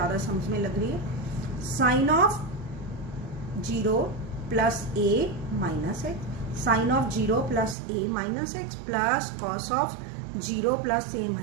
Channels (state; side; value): drops out; left; at 7.8 s